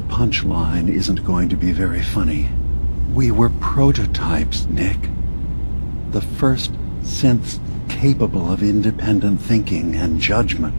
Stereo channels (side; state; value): both; inverted; correlation -1.00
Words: punchline isn't going to be very funny. We were prototypes, Nick. The first synths capable of independent thinking and judgment.